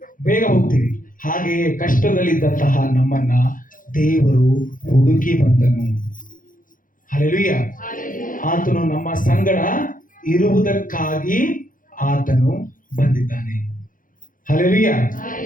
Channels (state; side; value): late; right; 0.39 ms